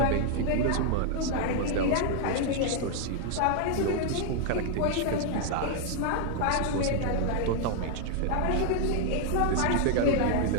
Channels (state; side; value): different; both; correlation 0.00